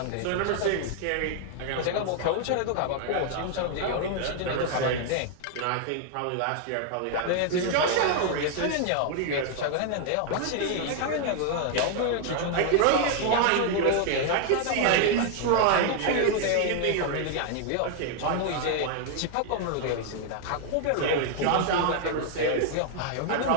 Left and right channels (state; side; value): different; both; correlation 0.00